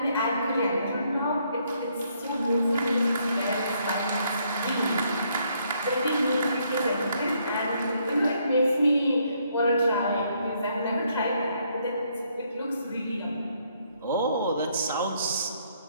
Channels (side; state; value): both; inverted; correlation -0.71